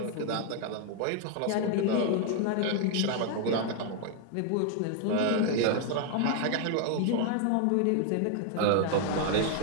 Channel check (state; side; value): different; both; correlation 0.00